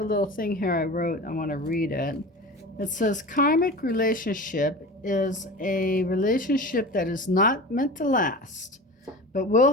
little thing here I wrote. I want to read it. It says, karmic relationship is a relationship that is not meant to last, but will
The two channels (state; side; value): normal; both; correlation 0.33